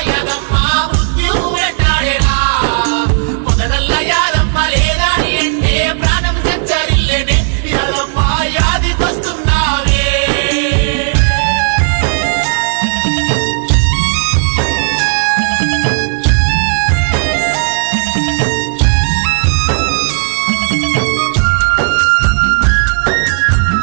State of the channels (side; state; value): left; silent; digital silence